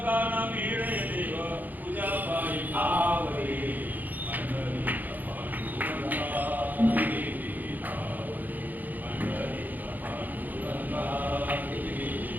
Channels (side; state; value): left; late; 0.084 ms